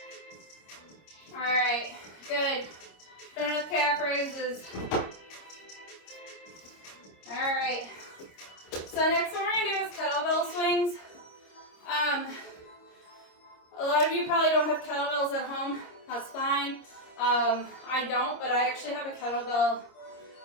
All right, good. Done with calf raises. All right. So next one we're gonna do is kettlebell swings. A lot of you probably don't have kettlebells at home. That's fine. I don't, but I actually have a kettlebell,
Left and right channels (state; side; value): late; right; 26 ms